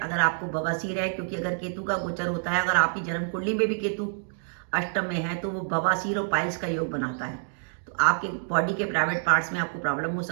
आपको बवासीर है, क्योंकि अगर केतु का गोचर होता है, अगर आपकी जन्म कुंडली में भी केतु अष्टम में है तो वो बवासीर और पाइल्स का योग बनाता है। तो आपके बॉडी के प्राइवेट पार्ट्स में आपको प्रॉब्लम हो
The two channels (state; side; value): silent; left; digital silence